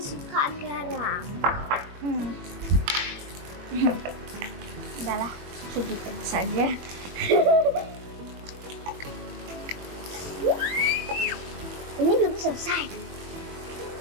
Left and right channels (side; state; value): left; late; 21 ms